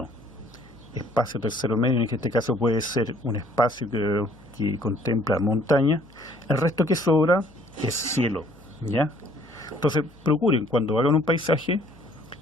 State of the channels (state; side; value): noise; left; hum, 27 dB below the sound